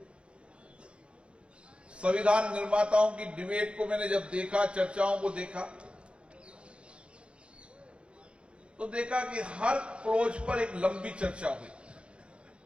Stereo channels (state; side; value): late; left; 0.058 ms